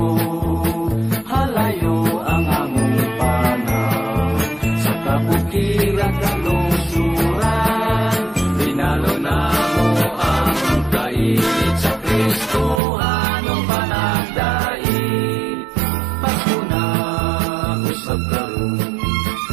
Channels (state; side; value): drops out; left; at 12.8 s